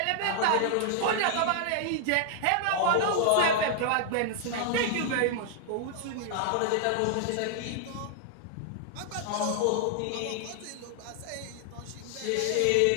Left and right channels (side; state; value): both; different; correlation 0.00